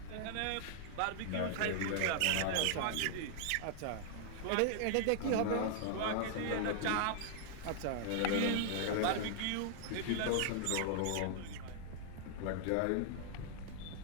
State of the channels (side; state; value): both; different; correlation 0.00